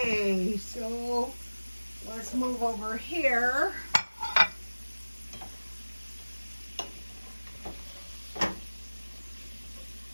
so let's move over here.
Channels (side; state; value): both; inverted; correlation -1.00